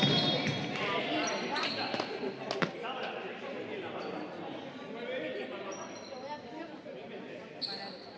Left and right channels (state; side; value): identical; both; correlation 1.00